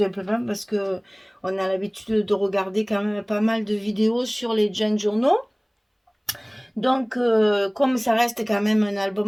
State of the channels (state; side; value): identical; both; correlation 1.00